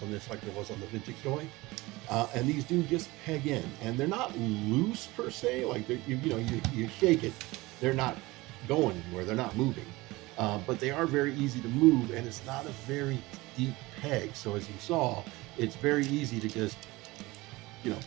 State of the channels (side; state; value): left; quieter; 21.1 dB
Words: on this like there was on the vintage toy. And these do just peg in, and they're not loose per se. Like you shake it, they're not going anywhere. They're not moving, but they are very easy to move, and it's not a very deep peg. So as you saw, it's very easy to just